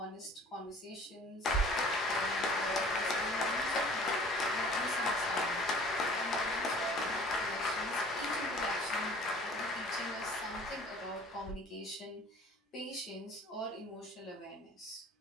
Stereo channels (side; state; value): both; normal; correlation 0.49